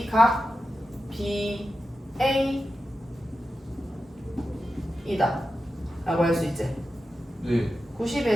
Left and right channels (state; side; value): normal; both; correlation 0.91